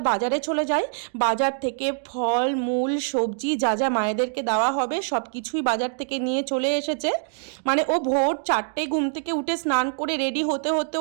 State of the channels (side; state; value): left; silent; digital silence